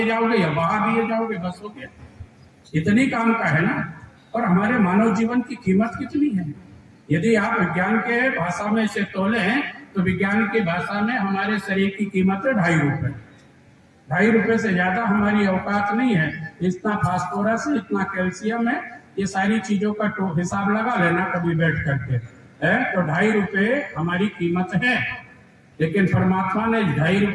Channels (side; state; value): both; identical; correlation 1.00